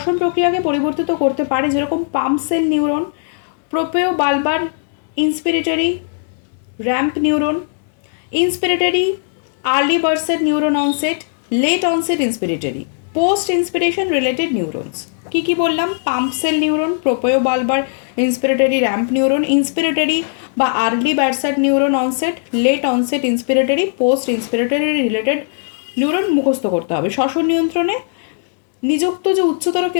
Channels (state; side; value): silent; right; digital silence